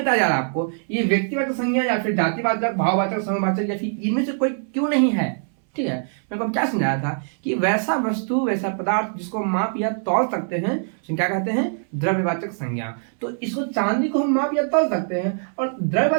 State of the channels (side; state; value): left; silent; 64 dB below the other